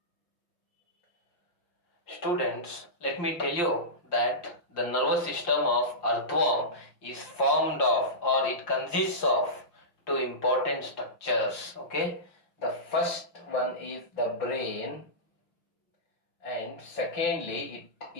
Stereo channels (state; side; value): late; right; 5.6 ms